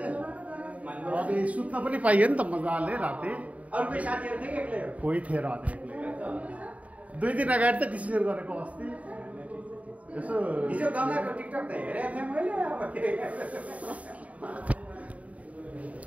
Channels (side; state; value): left; late; 0.068 ms